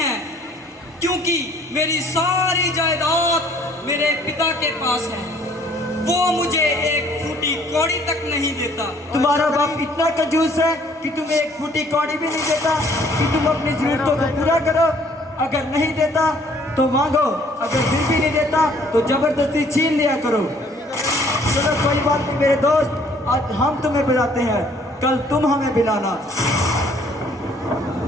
क्योंकि मेरी सारी जायदाद मेरे पिता के पास है। वो मुझे एक फूटी कौड़ी तक नहीं देता। तुम्हारा बाप इतना कंजूस है कि तुम्हें एक फूटी कौड़ी भी नहीं देता कि तुम अपनी जरूरतों को पूरा करो। अगर नहीं देता तो मांगो, अगर फिर भी नहीं देता तो जबरदस्ती छीन लिया करो। चलो कोई बात नहीं मेरे दोस्त, आज हम तुम्हें बुलाते हैं, कल तुम हमें बुलाना।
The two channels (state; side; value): normal; both; correlation 0.60